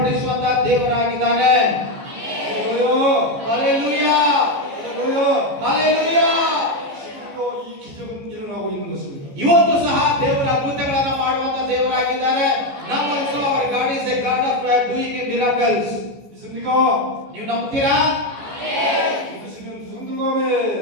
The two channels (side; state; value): left; late; 14 ms